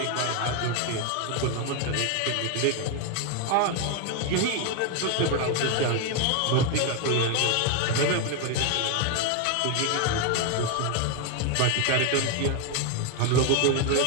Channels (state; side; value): different; both; correlation 0.01